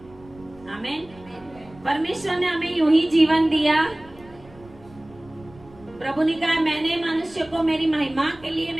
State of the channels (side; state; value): right; noise; rumble, 23 dB below the sound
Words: आमीन। परमेश्वर ने हमें यूं ही जीवन दिया। प्रभु ने कहा मैंने मनुष्य को मेरी महिमा के लिए,